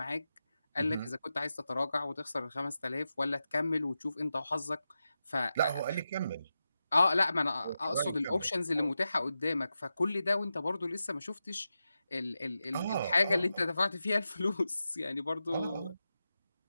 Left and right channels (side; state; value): both; inverted; correlation -0.90